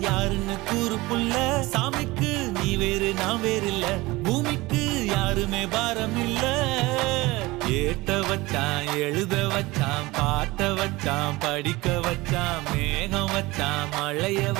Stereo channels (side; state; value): left; quieter; 21.0 dB